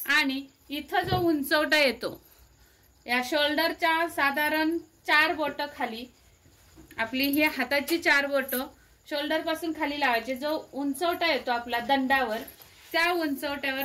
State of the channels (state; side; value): identical; both; correlation 1.00